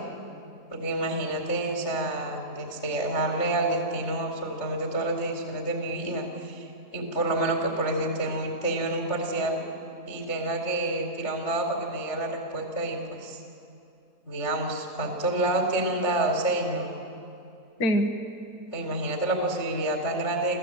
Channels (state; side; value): late; right; 3.4 ms